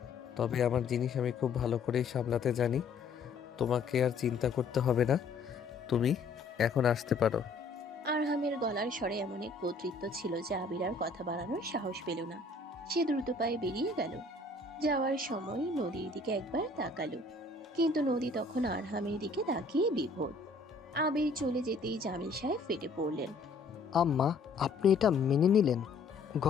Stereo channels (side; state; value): right; quieter; 3.7 dB